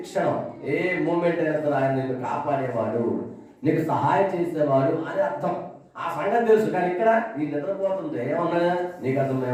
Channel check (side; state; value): both; identical; correlation 1.00